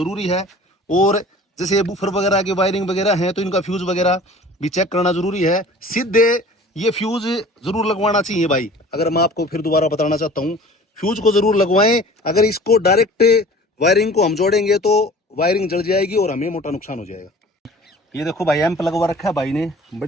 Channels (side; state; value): both; normal; correlation 0.45